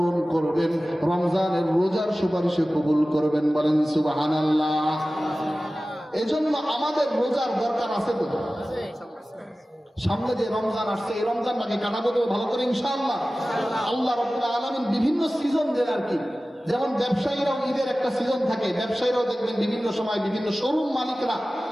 করবেন, রমজানের রোজার সুপারিশ কবুল করবেন। বলেন সুবহানাল্লাহ। এজন্য আমাদের রোজার দরকার আছে তো। সামনে যে রমজান আসছে, এই রমজানটাকে কাটাবো তো ভালো করে ইনশাআল্লাহ। আল্লাহ রাব্বুল আলামিন বিভিন্ন সিজন দেন আর কি। যেমন ব্যবসায়ীরাও ঈদের একটা সিজন থাকে, ব্যবসায়ীরাও দেখবেন বিভিন্ন সময় বিভিন্ন শোরুম মালিকরা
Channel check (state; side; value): normal; both; correlation 0.96